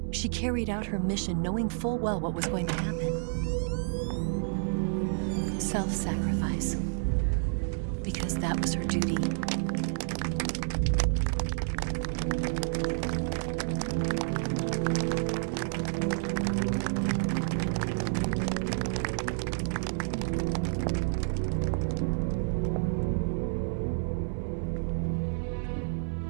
She carried out her mission knowing full well what was going to happen. Self-sacrifice. Because that was her duty.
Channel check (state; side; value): silent; left; 58 dB below the other